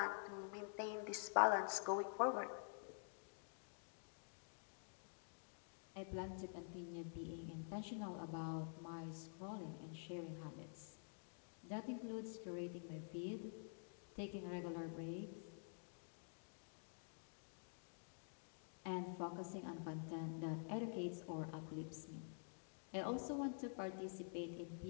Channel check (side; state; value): right; silent; digital silence